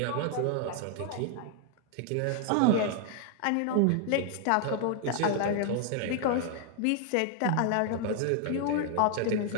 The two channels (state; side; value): different; both; correlation 0.00